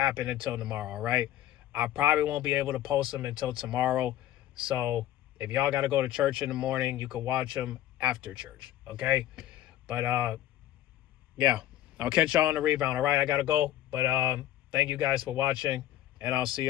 until tomorrow, all right? I probably won't be able to post them until tomorrow. So if y'all got to go to church in the morning, you can watch them after church, okay? But yeah, I'll catch y'all on the rebound, all right? I got to go. But thank you guys for watching, and I'll see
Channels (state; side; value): quieter; right; 13.2 dB